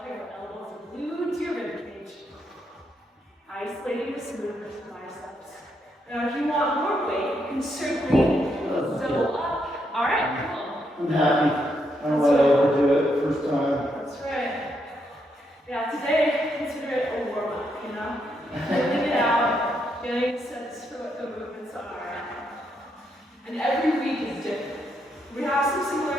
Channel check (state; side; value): normal; both; correlation 0.78